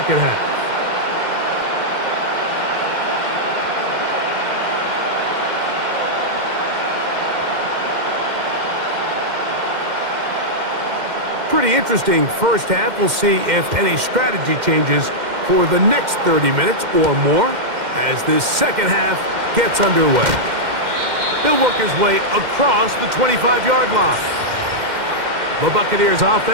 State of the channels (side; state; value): left; late; 2.1 ms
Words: half. Pretty interesting first half. We'll see if any strategy changes for the next 30 minutes or more as this second half gets underway. He'll work his way across the 25-yard line. The Buccaneers